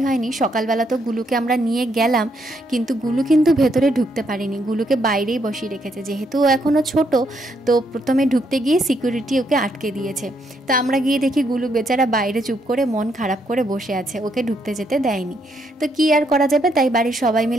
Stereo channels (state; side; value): normal; both; correlation 0.75